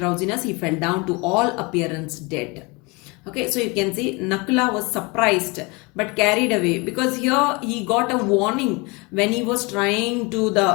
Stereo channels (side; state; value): right; quieter; 27.3 dB